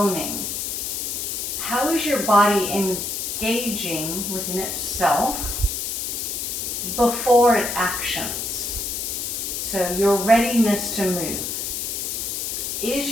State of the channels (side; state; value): left; noise; hiss, 3 dB below the sound